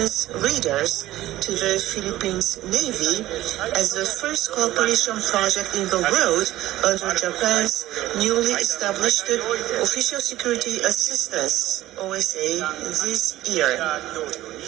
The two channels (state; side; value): quieter; left; 15.2 dB